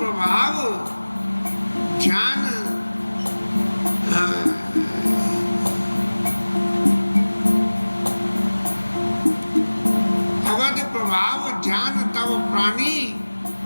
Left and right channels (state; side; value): inverted; both; correlation -1.00